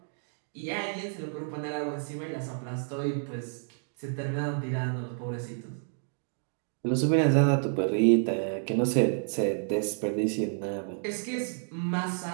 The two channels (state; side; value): silent; left; digital silence